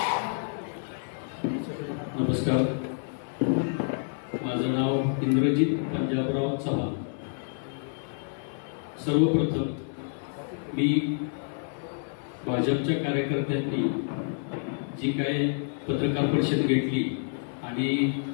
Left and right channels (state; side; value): silent; right; 59 dB below the other